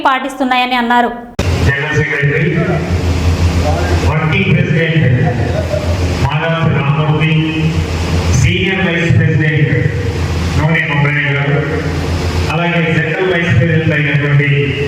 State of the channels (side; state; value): both; identical; correlation 1.00